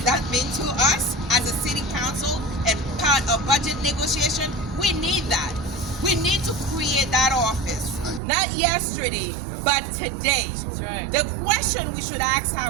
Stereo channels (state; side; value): drops out; left; at 8.2 s